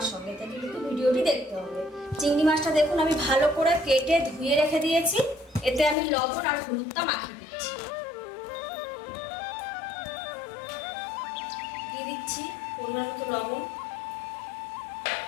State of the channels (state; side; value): drops out; right; at 6.0 s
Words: সঙ্গে থেকে কিন্তু ভিডিওটি দেখতে হবে। চিংড়ি মাছটা দেখুন আমি ভালো করে কেটে ধুয়ে রেখে দিয়েছি। এতে আমি লবণ আর হলুদটা মাখিয়ে দিচ্ছি। দিয়ে দিচ্ছি পরিমাণ মতো লবণ,